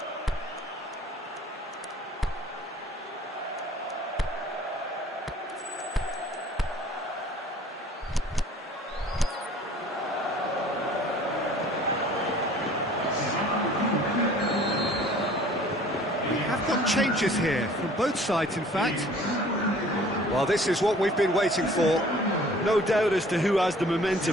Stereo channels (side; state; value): both; normal; correlation 0.51